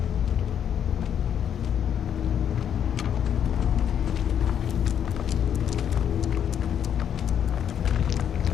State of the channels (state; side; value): quieter; right; 8.8 dB